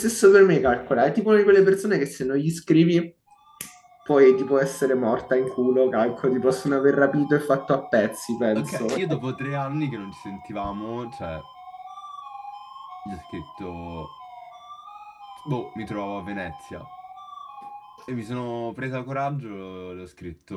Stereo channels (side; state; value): both; identical; correlation 1.00